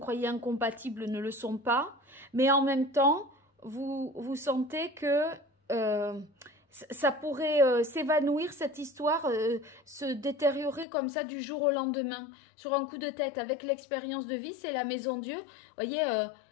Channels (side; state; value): right; drops out; at 10.9 s